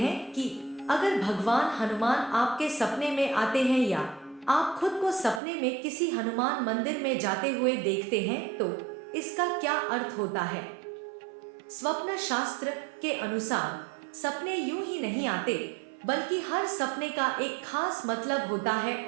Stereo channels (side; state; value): left; drops out; at 5.4 s